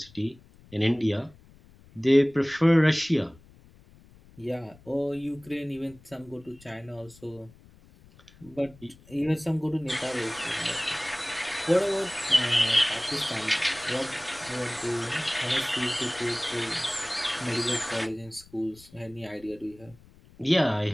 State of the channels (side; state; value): left; noise; rumble, 25 dB below the sound